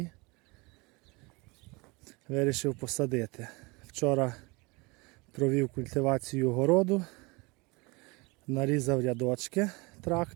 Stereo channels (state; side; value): quieter; left; 26.5 dB